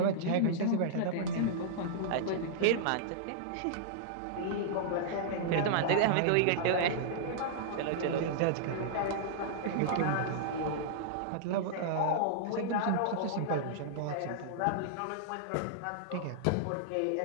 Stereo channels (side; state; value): both; different; correlation -0.02